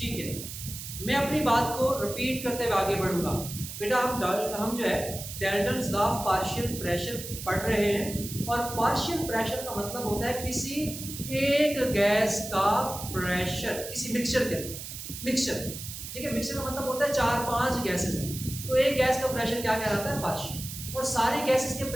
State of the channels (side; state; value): right; noise; hiss, 9 dB below the sound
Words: है, मैं अपनी बात को रिपीट करते हुए आगे बढ़ूंगा। बेटा हम जो है Dalton's law of partial pressure पढ़ रहे हैं, और पार्शियल प्रेशर का मतलब होता है किसी एक गैस का प्रेशर किसी मिक्सचर के अंदर। मिक्सचर, ठीक है, मिक्सचर का मतलब होता है 4-5 गैसेस हैं, तो एक गैस का प्रेशर क्या कहलाता है? पार्शियल। और सारी गैसेस के